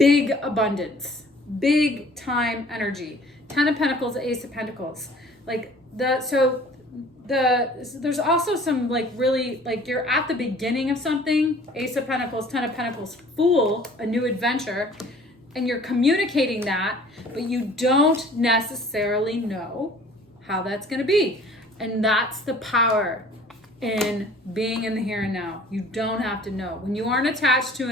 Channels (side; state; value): both; normal; correlation 0.51